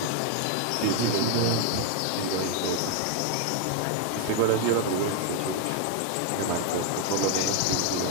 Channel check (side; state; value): both; different; correlation 0.00